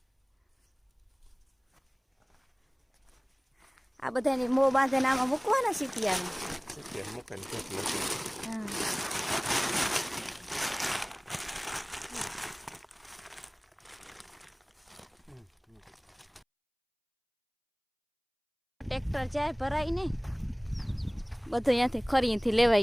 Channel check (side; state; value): both; identical; correlation 1.00